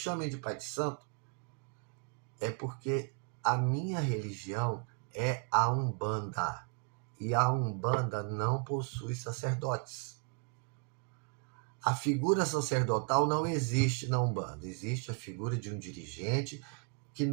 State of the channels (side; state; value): left; quieter; 37.6 dB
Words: de pai de santo, é porque a minha religião é a Umbanda. E a Umbanda não possui sacerdotes. A figura sacerdotal não existe na Umbanda. Existe a figura de um dirigente que